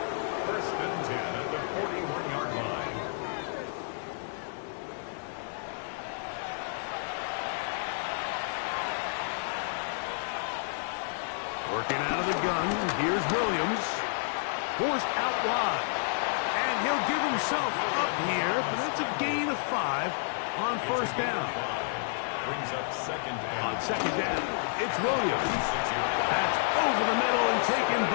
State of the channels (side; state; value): right; silent; digital silence